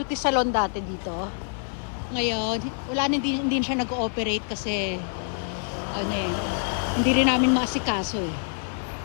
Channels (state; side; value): silent; right; digital silence